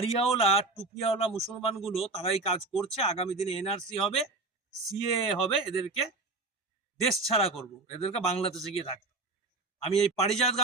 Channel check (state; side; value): quieter; left; 3.4 dB